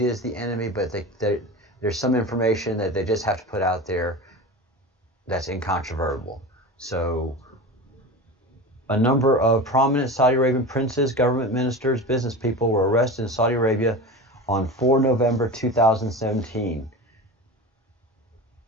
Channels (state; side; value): normal; both; correlation 0.29